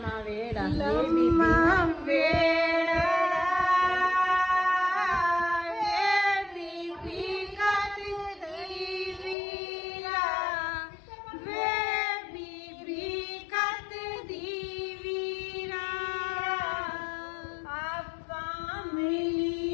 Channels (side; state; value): right; drops out; at 9.3 s